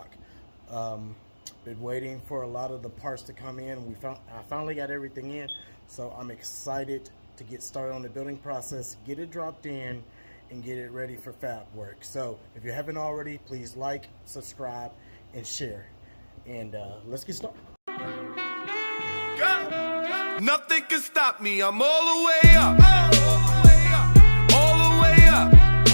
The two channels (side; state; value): both; inverted; correlation -1.00